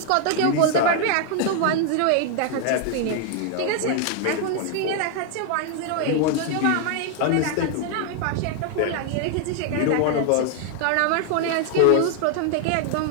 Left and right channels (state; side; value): different; both; correlation 0.00